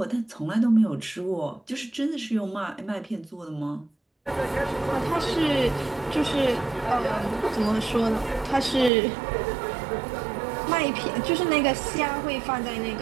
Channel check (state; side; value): drops out; left; at 8.9 s